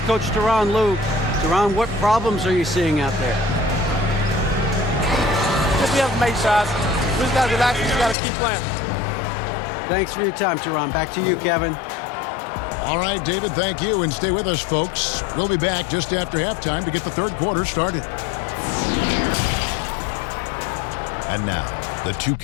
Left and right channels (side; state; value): right; drops out; at 8.2 s